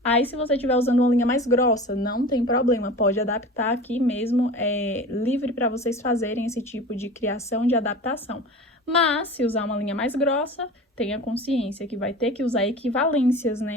Aí, se você estiver usando uma linha mais grossa, não tem problema, pode adaptar aqui mesmo, livre para vocês fazerem esse tipo de criação de adaptação. Mas, se usar uma linha mais grossa, tenha consciência que vai ter que usar equivalências,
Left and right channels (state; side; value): normal; both; correlation 0.36